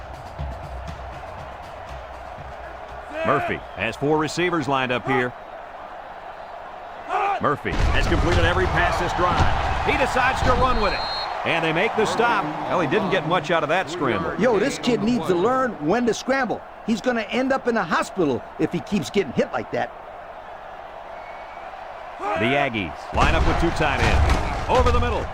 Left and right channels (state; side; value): identical; both; correlation 1.00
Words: Murphy has 4 receivers lined up here. Murphy has completed every pass this drive. He decides to run with it. And they make the stop. Well, he didn't get much out of that scramble. Yo, this kid needs to learn when to scramble. He's going to end up in a hospital if he keeps getting hit like that. The Aggies line up with 2 tight ends. Over the middle.